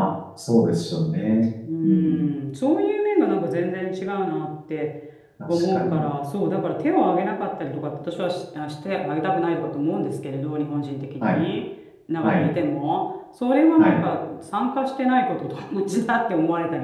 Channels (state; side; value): identical; both; correlation 1.00